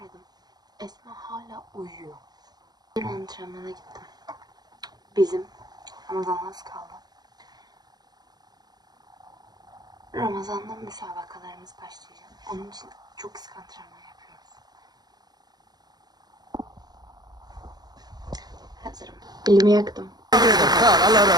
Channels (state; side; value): late; left; 0.19 ms